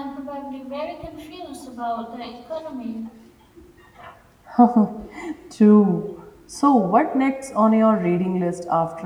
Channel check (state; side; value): identical; both; correlation 1.00